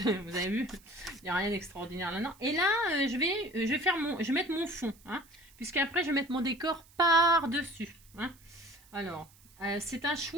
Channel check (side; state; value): right; noise; hiss, 27 dB below the sound